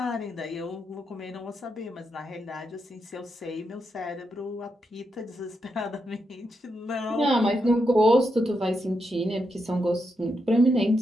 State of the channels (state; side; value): normal; both; correlation 0.83